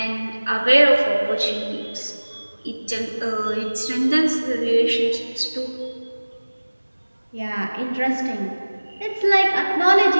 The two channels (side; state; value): both; inverted; correlation -1.00